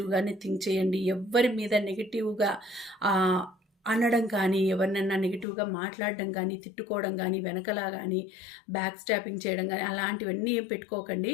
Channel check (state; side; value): drops out; right; at 5.5 s